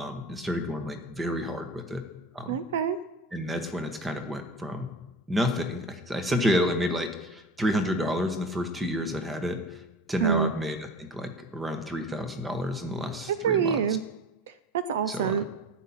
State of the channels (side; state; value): both; normal; correlation 0.34